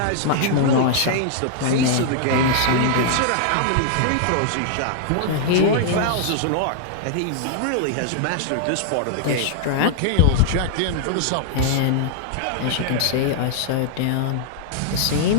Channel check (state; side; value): different; both; correlation -0.01